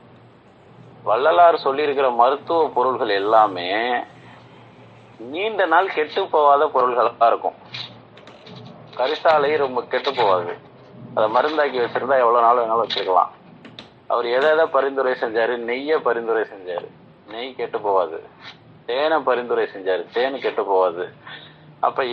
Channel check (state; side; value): identical; both; correlation 1.00